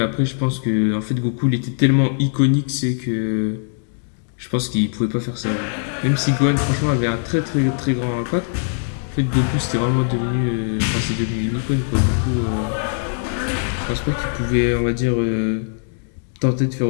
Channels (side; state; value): right; silent; digital silence